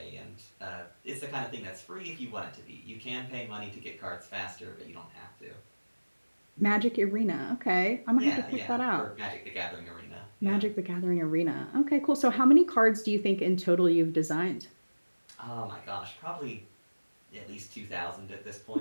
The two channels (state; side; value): inverted; both; correlation -1.00